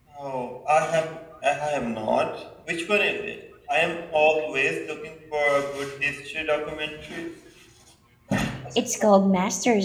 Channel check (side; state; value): both; identical; correlation 1.00